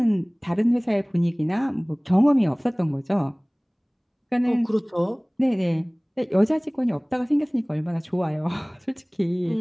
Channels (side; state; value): both; identical; correlation 1.00